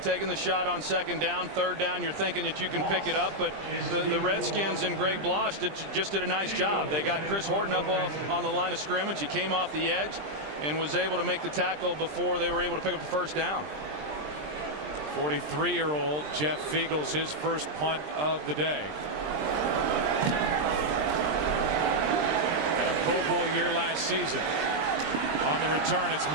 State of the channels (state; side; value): late; left; 20 ms